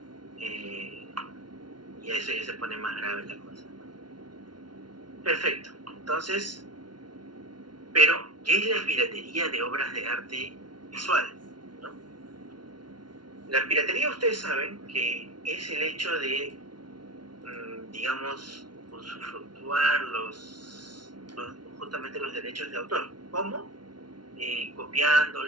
Y eso ya se pone más grave la cosa, ¿no? Perfecto. Entonces, pero, ¿qué es la piratería de obras de arte visual, ¿no? La piratería, ustedes saben que es el hecho de, digamos, usufructuar justamente los derechos de autor. ¿Cómo?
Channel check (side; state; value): left; late; 0.71 ms